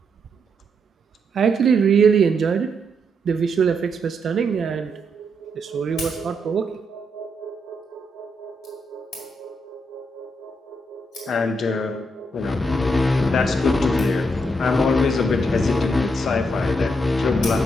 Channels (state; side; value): normal; both; correlation 0.79